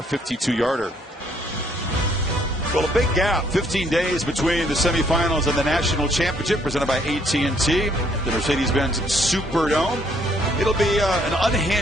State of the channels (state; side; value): normal; both; correlation 0.66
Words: 52-yarder. Well, a big gap, 15 days between the semifinals and the national championship presented by AT&T, the Mercedes-Benz Superdome. It'll be an